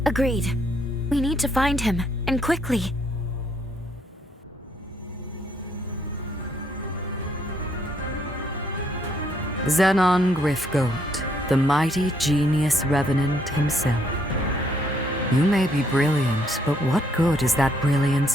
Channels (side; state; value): both; normal; correlation 0.71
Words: Agreed. We need to find him, and quickly. Zenon Griffgoat, the mighty genius revenant himself. You may be brilliant, but what good is that